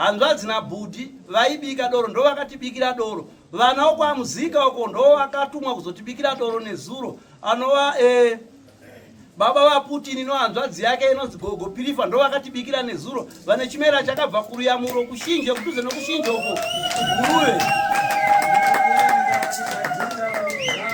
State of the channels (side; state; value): both; identical; correlation 1.00